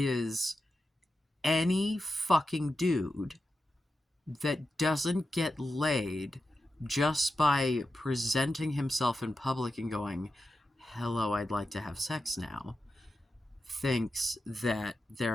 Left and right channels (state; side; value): normal; both; correlation 0.91